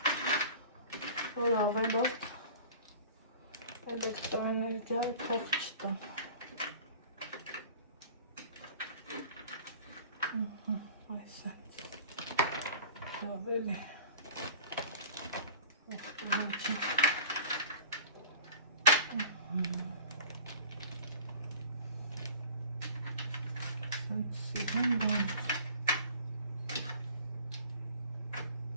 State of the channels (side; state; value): both; inverted; correlation -0.42